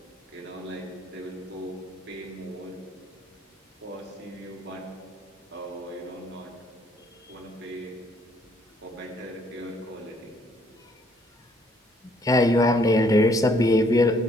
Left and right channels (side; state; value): both; normal; correlation 0.65